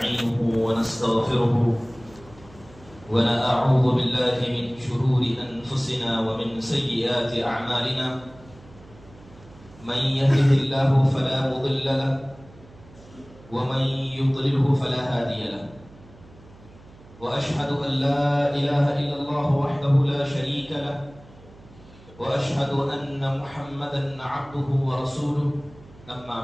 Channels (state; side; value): noise; right; hum, 23 dB below the sound